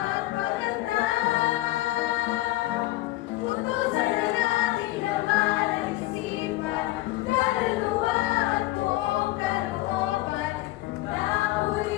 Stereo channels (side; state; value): right; quieter; 17.8 dB